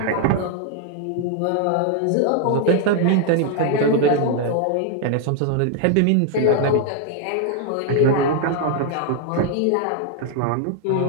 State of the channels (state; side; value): different; both; correlation 0.00